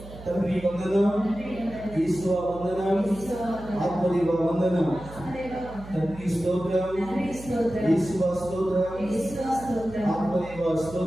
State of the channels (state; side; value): noise; right; hum, 15 dB below the sound